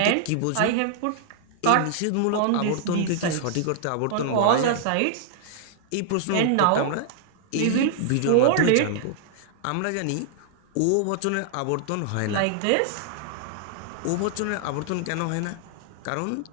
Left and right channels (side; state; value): both; different; correlation -0.01